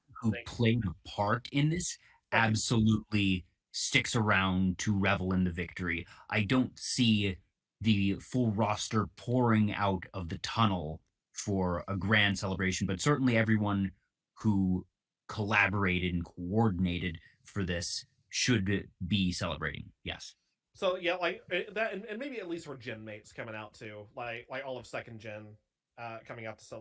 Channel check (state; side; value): identical; both; correlation 1.00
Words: who played a part in this Right. absolutely sticks around to revel in the victory. I don't see the full roster pouring out of the tunnel for a grand celebration, but certainly everyone who collaborated and coordinated for this should be celebrating. Yes. So yeah, like that, and maybe at least for gen mates coming out too, like all of second gen coming out to